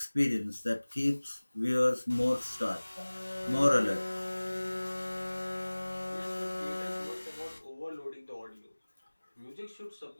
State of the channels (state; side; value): inverted; both; correlation -1.00